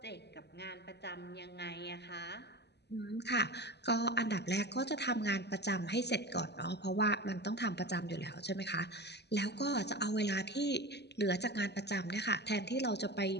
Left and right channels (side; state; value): right; late; 0.49 ms